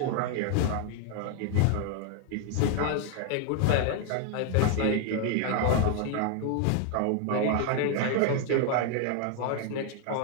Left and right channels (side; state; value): both; different; correlation 0.01